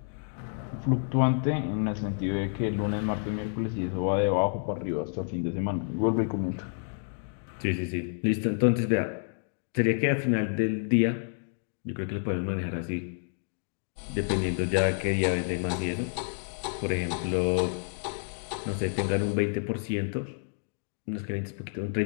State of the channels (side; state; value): right; silent; digital silence